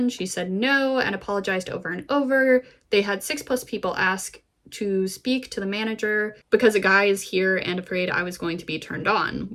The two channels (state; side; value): identical; both; correlation 1.00